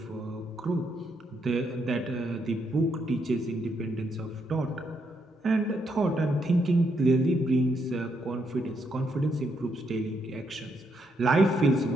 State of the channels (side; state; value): both; normal; correlation 0.77